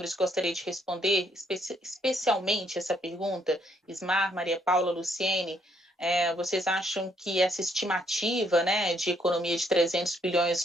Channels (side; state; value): both; normal; correlation 0.70